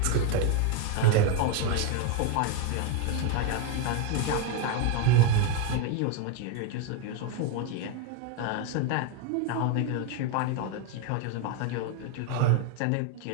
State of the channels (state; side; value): different; both; correlation 0.01